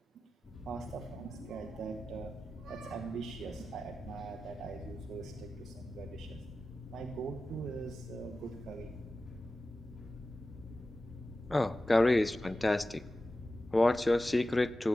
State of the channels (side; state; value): both; normal; correlation 0.94